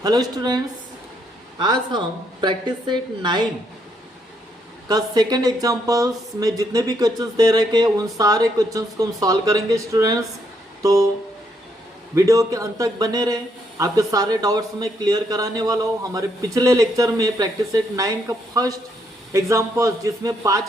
Hello students, आज हम practice set 9 का सेकंड एग्जांपल्स में जितने भी क्वेश्चंस दे रखे उन सारे क्वेश्चंस को हम सॉल्व करेंगे स्टूडेंट्स। तो वीडियो के अंत तक बने रहे, आपके सारे डाउट्स में क्लियर कराने वाला हूँ। हमारे पिछले लेक्चर में प्रैक्टिस सेट 9 का फर्स्ट एग्जाम्पल्स जिसमें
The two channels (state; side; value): normal; both; correlation 0.74